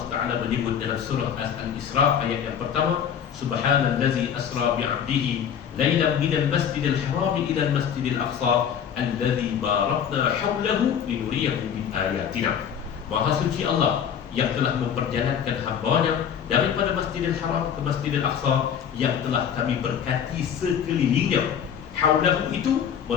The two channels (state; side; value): quieter; right; 8.3 dB